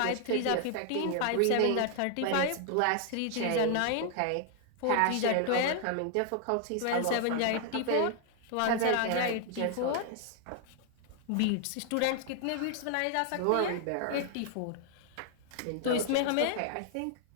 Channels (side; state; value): both; different; correlation 0.00